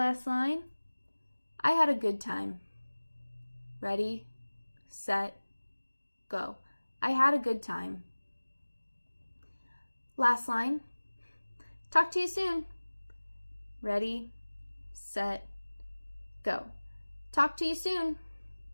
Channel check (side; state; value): both; inverted; correlation -1.00